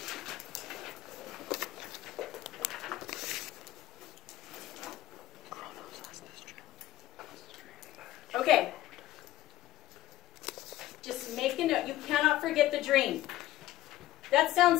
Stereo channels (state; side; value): quieter; right; 14.9 dB